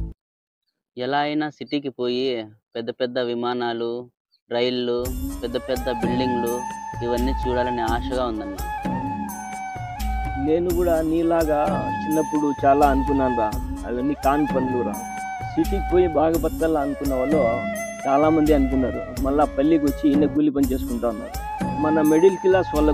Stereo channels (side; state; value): both; identical; correlation 1.00